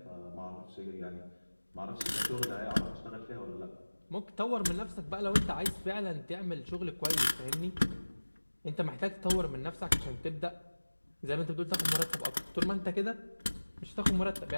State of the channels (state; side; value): inverted; both; correlation -1.00